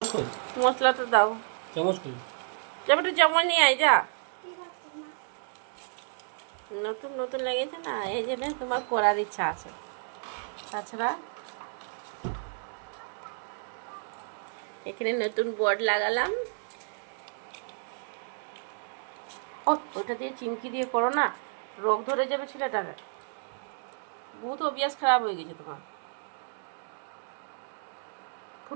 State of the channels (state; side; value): silent; left; digital silence